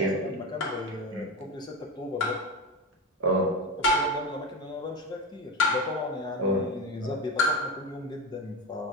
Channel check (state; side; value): normal; both; correlation 0.20